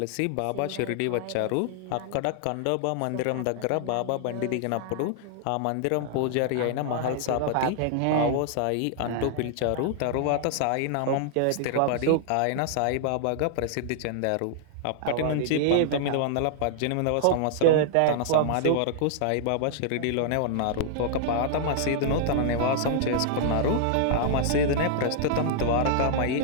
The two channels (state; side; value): different; both; correlation -0.01